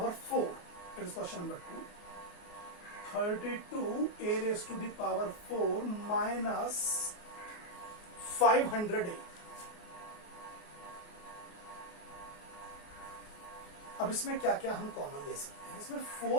4, it is question number 2। 32 a raised to the power 4 minus 500a। अब इसमें क्या क्या हम कॉमन ले सकते हैं? इसमें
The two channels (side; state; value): right; late; 28 ms